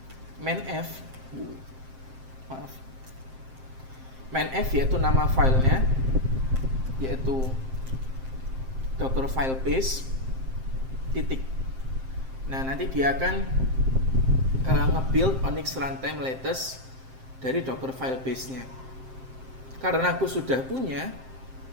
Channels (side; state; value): left; late; 7.6 ms